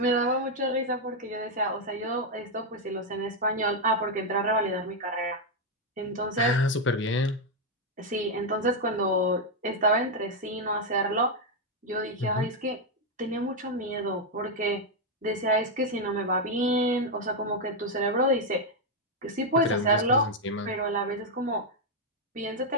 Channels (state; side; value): normal; both; correlation 0.01